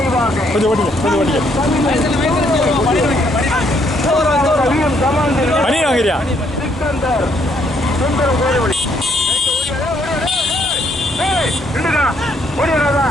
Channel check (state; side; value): normal; both; correlation 0.70